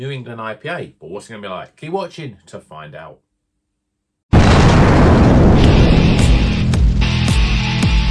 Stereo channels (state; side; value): identical; both; correlation 1.00